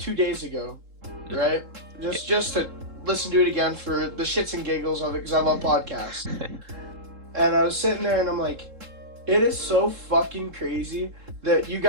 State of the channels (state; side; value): late; left; 3.7 ms